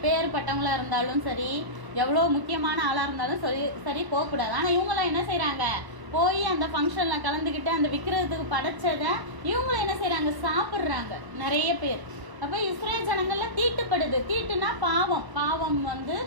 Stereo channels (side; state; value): left; late; 1.0 ms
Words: இருந்தாலும் சரி, எவ்வளோ முக்கியமான ஆளா இருந்தாலும் சரி போகக்கூடாது. ஆனா இவங்களாம் என்ன செய்யறாங்க, போய் அந்த ஃபங்க்ஷன்ல கலந்துக்கிட்டு அந்த விற்கிறதுக்கு படைச்சதை இவங்களும் என்ன செய்யறாங்க, சாப்பிட்றாங்க நிறைய பேர். அப்ப இஸ்ரேல் ஜனங்கள்ல தீட்டுப்படுது. தீட்டுனா பாவம். பாவம்